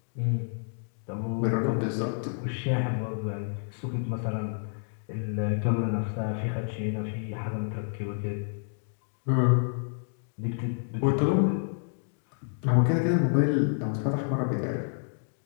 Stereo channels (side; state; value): right; silent; digital silence